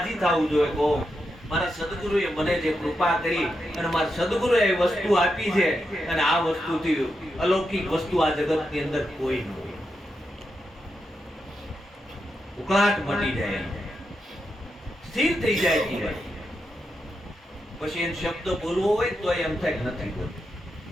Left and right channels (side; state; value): both; normal; correlation 0.86